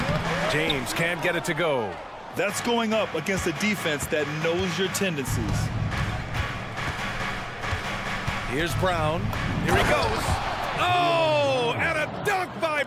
James can't get it to go. That's going up against a defense that knows your tendencies. Here's Brown. Here he goes. Oh, and a dunk by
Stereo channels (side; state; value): both; identical; correlation 1.00